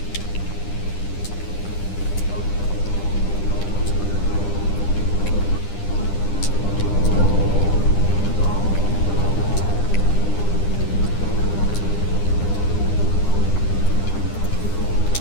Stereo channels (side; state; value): right; late; 9.9 ms